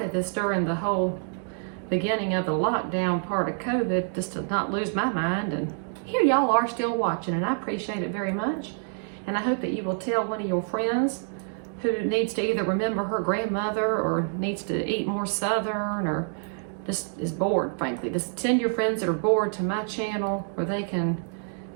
this during the whole beginning of the lockdown part of COVID, just to not lose my mind. And here y'all are still watching, and I appreciate it very much. And I hope that you will tell one of your friends who needs to either remember her grandmother or needs to eat more Southern or just is bored, frankly. Just send your friends that are bored to my channel where they can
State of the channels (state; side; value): silent; left; digital silence